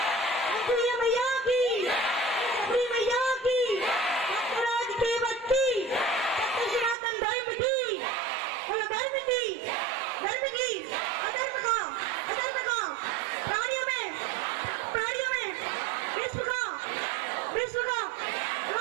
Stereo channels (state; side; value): drops out; left; at 7.0 s